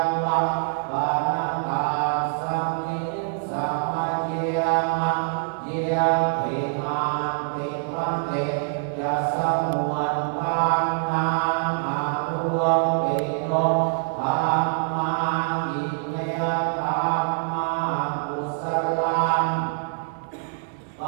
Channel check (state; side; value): silent; left; 62 dB below the other